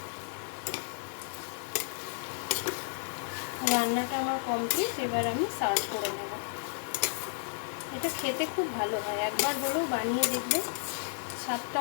রান্নাটা আমার কমপ্লিট। এবার আমি সার্ভ করে নেব। এটা খেতে খুব ভালো হয়, একবার হলেও বানিয়ে দেখবে, স্বাদটা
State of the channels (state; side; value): silent; right; 56 dB below the other